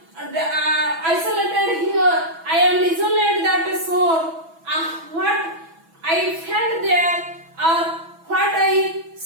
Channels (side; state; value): left; late; 6.1 ms